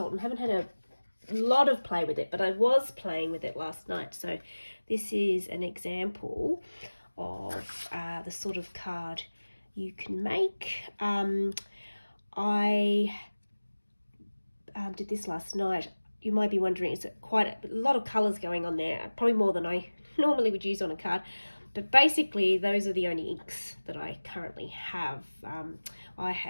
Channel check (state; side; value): inverted; both; correlation -1.00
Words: haven't had a lot of play with it, but I was playing with it last night. So this is an example of the sort of card you can make. I did this last night. You might be wondering, is it quite a lot of colours going on there? Probably more than I normally would use on a card. But basically, those are the only inks that I currently have. I